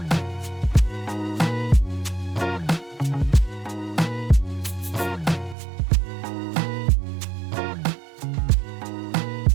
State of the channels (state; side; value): drops out; left; at 5.6 s